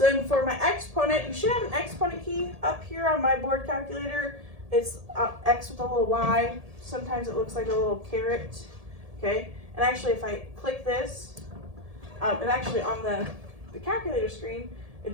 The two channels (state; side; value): late; left; 1.7 ms